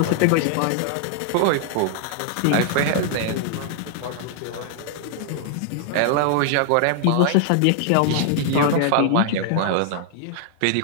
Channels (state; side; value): different; both; correlation 0.00